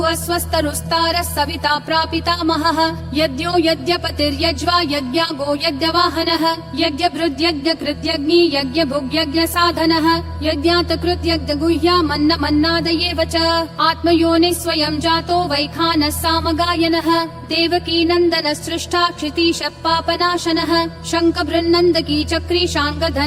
स्वस्तरुस्तारः सविता प्रापितामहः यज्ञो यज्ञपतिर्यज्वा यज्ञागो यज्ञवाहनः यज्ञभृद्यज्ञकृत्यग्नि यज्ञभुग्यज्ञसाधनः यज्ञातकृत्यज्ञगुह्या मन्नादयेव च आत्मयोनिः स्वयं जातो वैखानः सामगायनः देवकी नन्दनः सृष्टा क्षितीशः पापनाशनः शङ्खबृन्नन्दकी चक्री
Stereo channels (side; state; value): both; identical; correlation 1.00